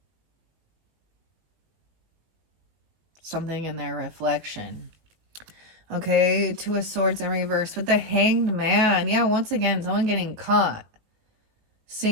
Something in their reflection. Okay, Two of Swords in reverse with the Hanged Man. Yeah, once again, someone getting caught.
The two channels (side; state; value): left; late; 19 ms